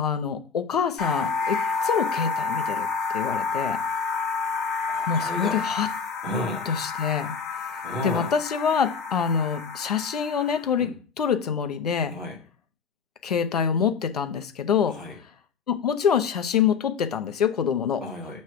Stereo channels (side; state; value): right; quieter; 6.0 dB